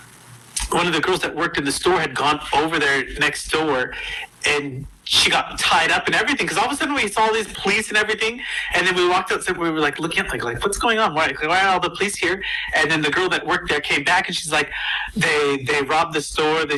one of the girls that worked in the store had gone over there next door, and she got tied up and everything. Because all of a sudden we saw all these police and everything, and then we walked outside. We were like looking at like what's going on? Why are all the police here? And then the girl that worked there came back, and she's like, they robbed the store. They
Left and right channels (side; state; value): both; identical; correlation 1.00